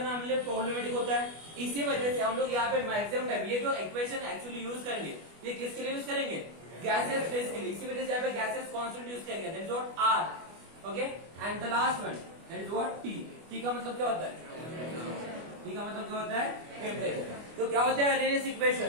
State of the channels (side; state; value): left; late; 25 ms